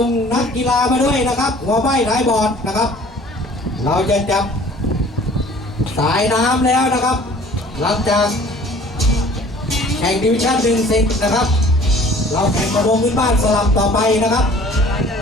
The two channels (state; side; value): normal; both; correlation 0.51